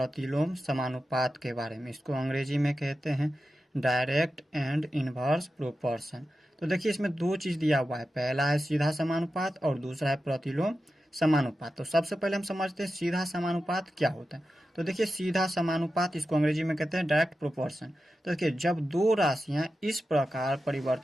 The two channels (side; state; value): both; normal; correlation 0.92